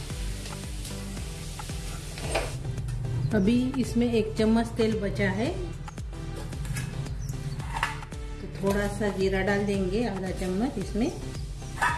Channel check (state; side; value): identical; both; correlation 1.00